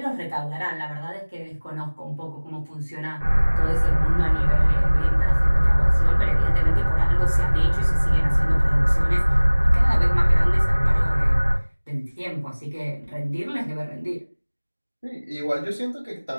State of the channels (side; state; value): both; inverted; correlation -1.00